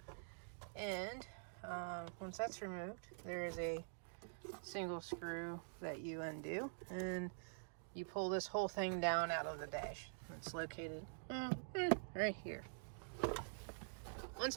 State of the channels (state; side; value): silent; left; digital silence